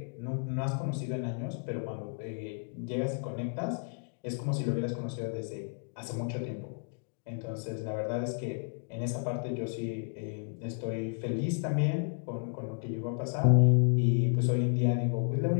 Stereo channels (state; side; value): silent; right; 56 dB below the other